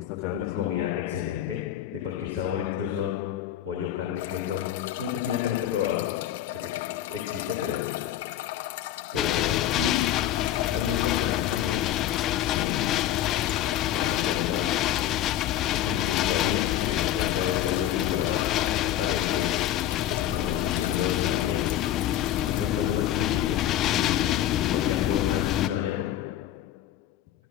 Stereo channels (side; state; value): right; quieter; 12.1 dB